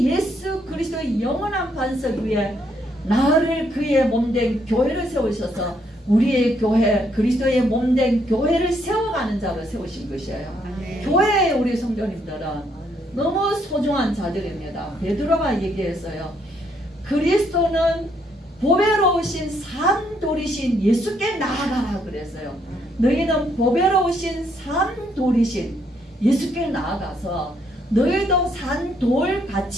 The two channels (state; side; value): normal; both; correlation 0.72